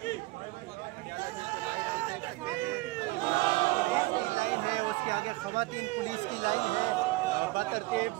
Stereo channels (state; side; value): quieter; left; 21.4 dB